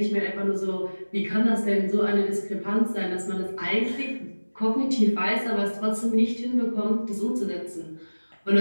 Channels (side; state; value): both; inverted; correlation -1.00